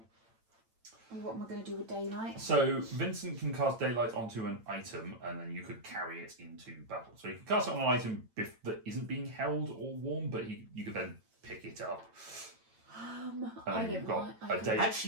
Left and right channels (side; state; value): left; late; 8.9 ms